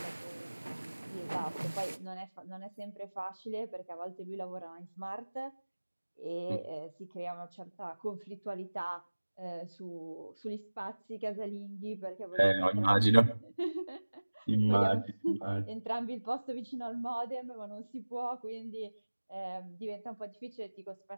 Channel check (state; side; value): inverted; both; correlation -1.00